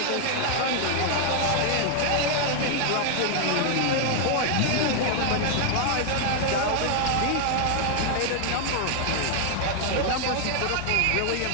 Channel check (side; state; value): both; different; correlation 0.00